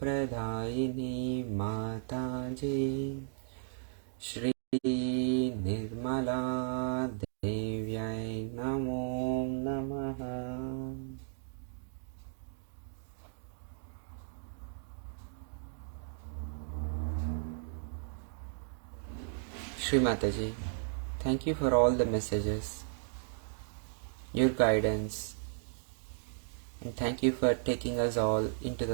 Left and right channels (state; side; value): silent; left; digital silence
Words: Pradayini Mataji Shri Nirmala Devyai Namo Namaha. Shri Mataji, thank you for all the messages, your guidance, and thank you for taking us all into